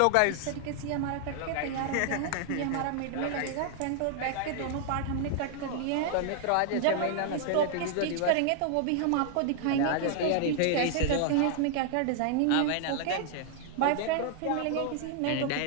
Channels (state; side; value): different; both; correlation 0.00